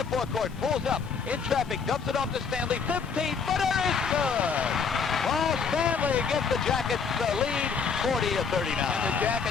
forecourt. Pulls up. In traffic. Dumps it off to Stanley. 15-footer is good. Paul Stanley gives the Jackets the lead, 40-39. And the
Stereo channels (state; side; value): quieter; right; 5.7 dB